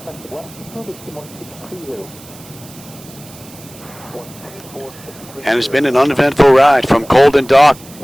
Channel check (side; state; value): right; noise; hiss, 20 dB below the sound